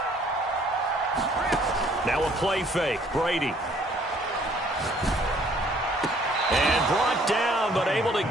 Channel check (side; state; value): both; normal; correlation 0.60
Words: Now a play fake. Brady. And brought down, but able to